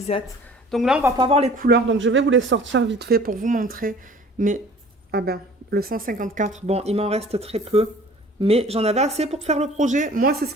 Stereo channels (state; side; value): normal; both; correlation 0.49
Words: Donc là, on va pas voir les couleurs. Donc, je vais vous les sortir vite fait pour vous montrer. Mais, ah ben, le 154, bon, il m'en reste très peu. Mais j'en avais assez pour faire le projet. Moi, c'est ce